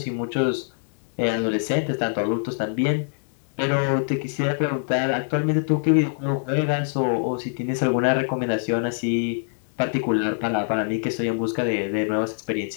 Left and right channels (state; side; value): silent; right; 62 dB below the other